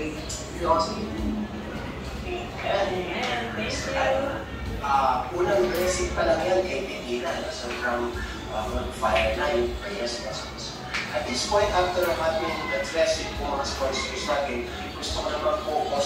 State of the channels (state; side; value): identical; both; correlation 1.00